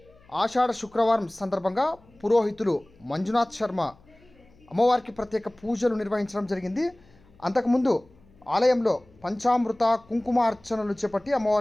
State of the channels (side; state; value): left; noise; hum, 28 dB below the sound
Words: ఆషాఢ శుక్రవారం సందర్భంగా పురోహితులు మంజునాథ్ శర్మ అమ్మవారికి ప్రత్యేక పూజలు నిర్వహించడం జరిగింది. అంతకుముందు ఆలయంలో పంచామృత కుంకుమ అర్చనలు చేపట్టి